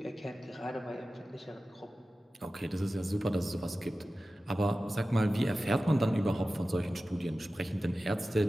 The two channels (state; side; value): normal; both; correlation 0.95